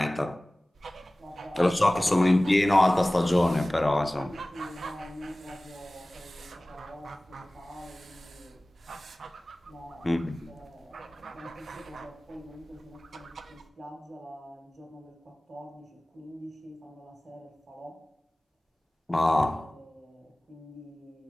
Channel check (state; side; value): normal; both; correlation 0.98